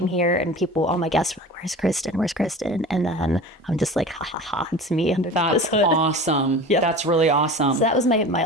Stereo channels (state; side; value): normal; both; correlation 0.36